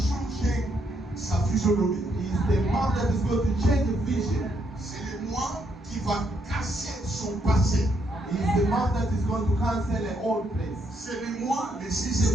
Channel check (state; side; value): normal; both; correlation 0.75